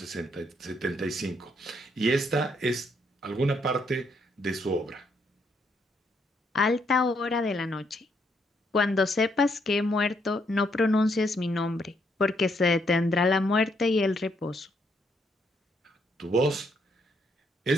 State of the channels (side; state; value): both; normal; correlation 0.74